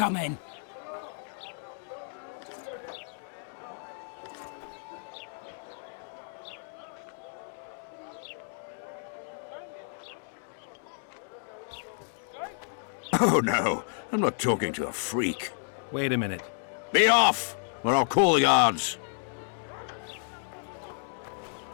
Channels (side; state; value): right; silent; digital silence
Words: Oh no, I'm not talking to a freak. Wait a minute. Be off, or I'll call the guards.